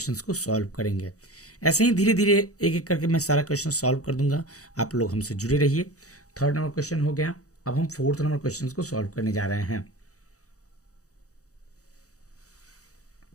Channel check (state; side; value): late; right; 0.66 ms